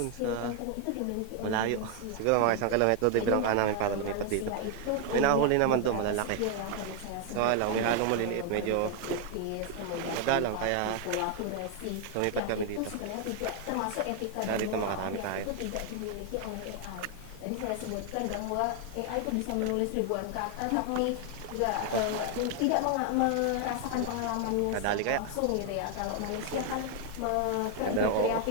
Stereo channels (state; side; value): different; both; correlation 0.00